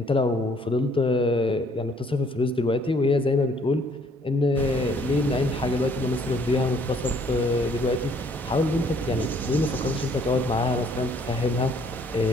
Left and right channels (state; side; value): normal; both; correlation 0.63